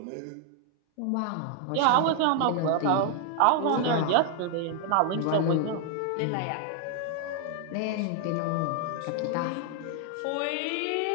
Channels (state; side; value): different; both; correlation 0.00